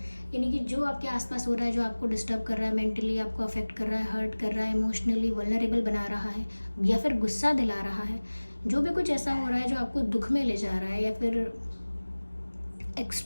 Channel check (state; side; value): inverted; both; correlation -1.00